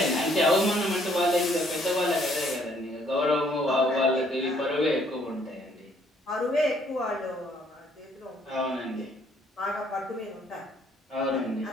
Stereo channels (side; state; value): both; normal; correlation 0.65